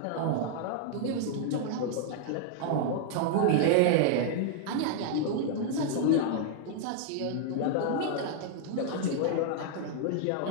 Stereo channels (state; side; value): different; both; correlation 0.00